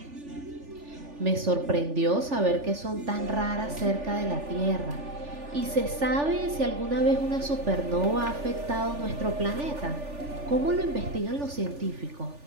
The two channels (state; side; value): late; left; 3.4 ms